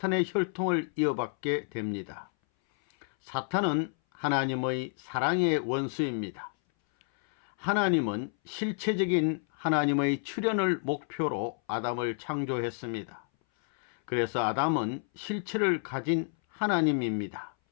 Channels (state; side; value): silent; right; 58 dB below the other